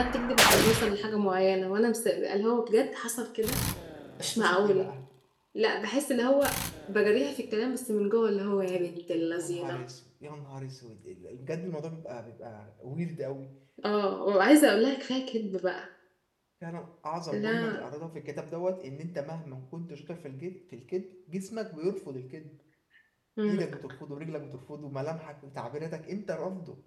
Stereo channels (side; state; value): both; identical; correlation 1.00